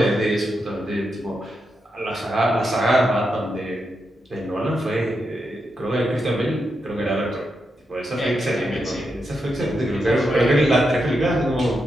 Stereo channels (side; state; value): both; normal; correlation 0.85